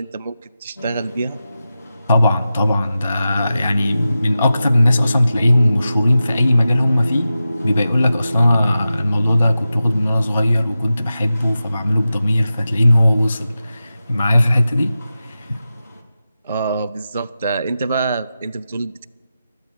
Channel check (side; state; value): both; inverted; correlation -0.92